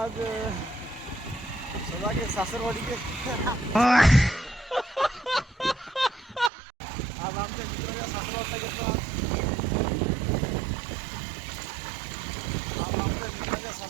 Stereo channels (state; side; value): drops out; left; at 6.5 s